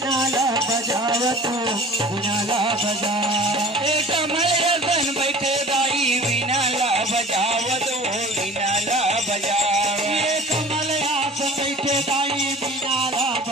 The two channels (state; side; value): normal; both; correlation 0.43